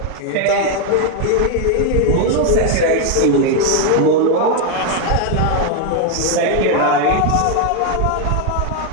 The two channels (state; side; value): different; both; correlation 0.01